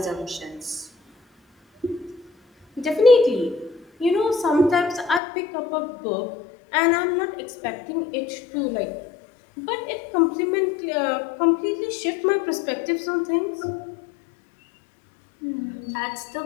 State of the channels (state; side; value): drops out; right; at 5.2 s